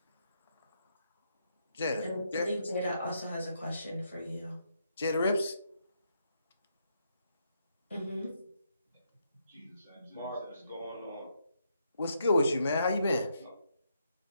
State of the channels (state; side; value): inverted; both; correlation -0.78